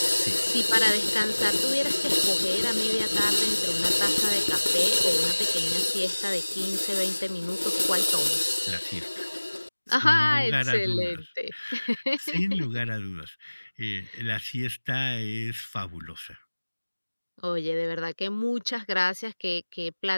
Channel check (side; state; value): both; inverted; correlation -1.00